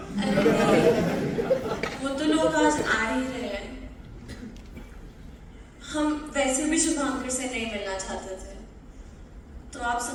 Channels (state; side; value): identical; both; correlation 1.00